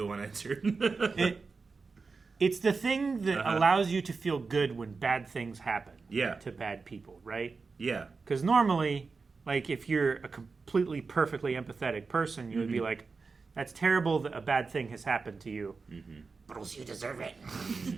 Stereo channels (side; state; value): left; quieter; 4.5 dB